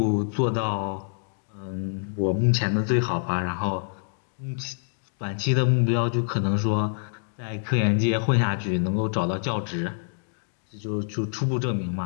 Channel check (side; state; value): right; silent; digital silence